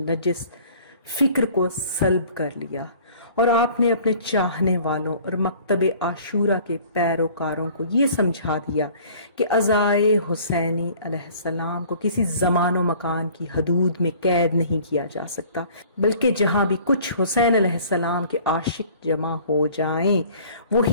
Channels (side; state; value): both; inverted; correlation -0.51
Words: فکر کو سلب کر لیا، اور آپ نے اپنے چاہنے والوں اور مکتب عاشورہ کے پیروکاروں کو یہ سمجھا دیا کہ عزائے حسینی علیہ السلام کو کسی زمان و مکان کی حدود میں قید نہیں کیا جا سکتا، بلکہ جہاں بھی کچھ حسین علیہ السلام کے عاشق جمع ہو جائیں